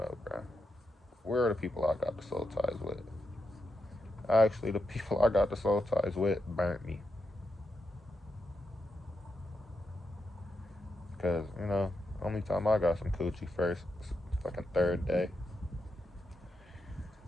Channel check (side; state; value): both; normal; correlation 0.85